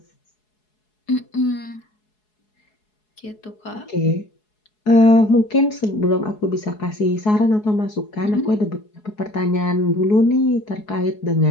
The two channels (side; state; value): right; late; 4.7 ms